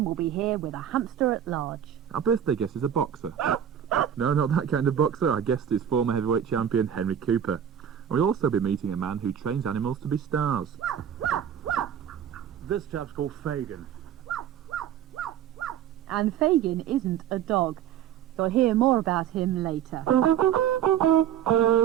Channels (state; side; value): quieter; left; 9.6 dB